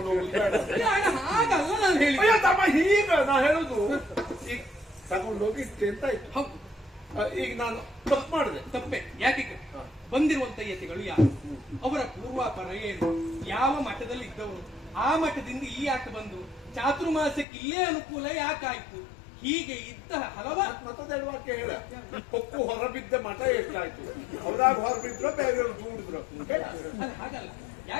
ಹೋಗುದು ಬೇಡ. ಹಾಗಲ್ಲ ನಾನು ಹೇಳಿ. ಅಯ್ಯೋ ತಮ್ಮ, ಈಗ ನಾ ಹೇಳುದು ಈಗ ತಗೊಂಡೋಗಿ ಇಟ್ಟೆ ಅಂತ ಆಯ್ತು. ಹೌದು, ಈಗ ನಾನು ತಪ್ಪು ಮಾಡಿದೆ. ತಪ್ಪೆ ಯಾಕೆ? ಬಂದಿರುವಂತ ಯತಿಗಳು ಯಾರು, ಅವರ ಪೂರ್ವಾಪರ ಏನು, ಯಾವ ಮಠದಲ್ಲಿ ಇದ್ದವರು, ಆ ಮಠದಿಂದ ಈ ಆಟ ಬಂದು ಚಾತುರ್ಮಾಸಕ್ಕೆ ಇಲ್ಲೇ ಅನುಕೂಲ ಯಾಕಾಯ್ತು, ಹೀಗೆ ಇದ್ದ ಹಲವಾರು ಮತ್ತದೆರಡು ವಾಕ್ಯ ಹೇಳ. ಕೊಕ್ಕು ಹೊರಬಿದ್ದ ಮಠ ಎಷ್ಟಾಯ್ತು, ಅವ್ರಾಗ ಹೊರಬಿದ್ರು ಬೇರೆಯವ್ರು ದೂಡಿದ್ರು. ಹಾಗಲ್ಲ.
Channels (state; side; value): drops out; right; at 17.4 s